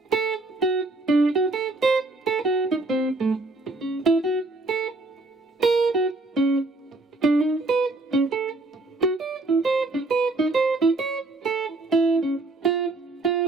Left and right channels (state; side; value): quieter; left; 3.1 dB